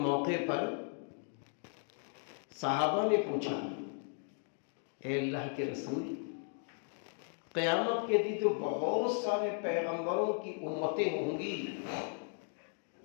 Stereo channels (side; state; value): right; silent; 54 dB below the other